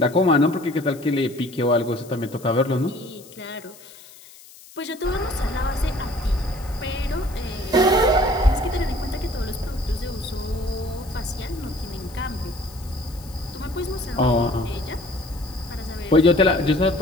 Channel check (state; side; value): noise; left; hiss, 21 dB below the sound